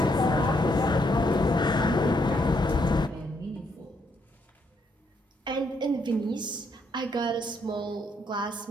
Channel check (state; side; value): normal; both; correlation 0.74